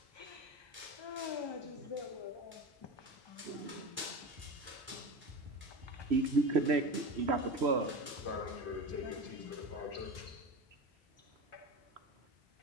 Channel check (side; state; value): both; normal; correlation 0.26